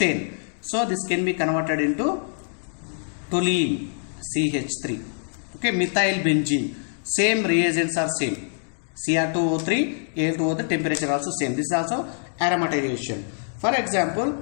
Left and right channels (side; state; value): right; silent; digital silence